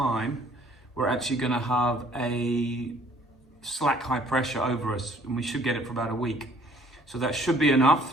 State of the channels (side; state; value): both; normal; correlation 0.59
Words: we're actually going to have a slack high pressure over us, and we should get it for about a week. So that should be